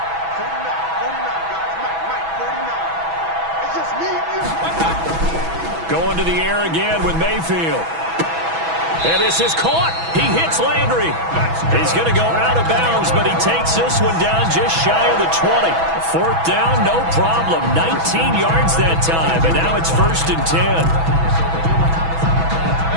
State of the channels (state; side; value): late; left; 6.1 ms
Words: 49, guys. Mike, 49. It's just me and you. Going to the air again with Mayfield. And this is caught. He hits Landry. He's going to go out of bounds, but he takes this one down just shy of the 20. 4th down, no problem. 19 yards that time, and now it's 1st and